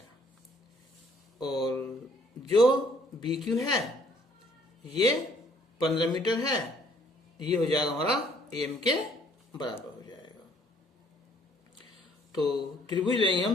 और जो BQ है ये 15 मीटर है। ये हो जाएगा हमारा AM के बराबर हो जाएगा। तो त्रिभुज लेंगे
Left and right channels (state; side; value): normal; both; correlation 0.62